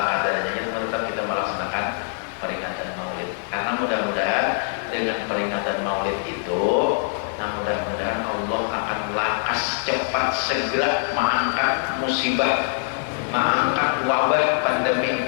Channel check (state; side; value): silent; right; 63 dB below the other